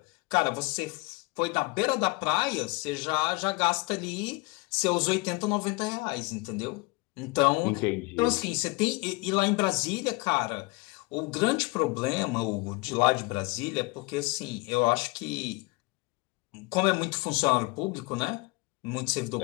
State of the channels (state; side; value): quieter; right; 25.0 dB